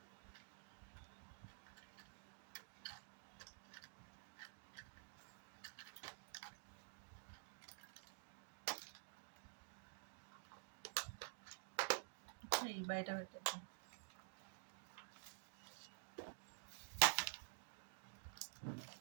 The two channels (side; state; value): left; silent; digital silence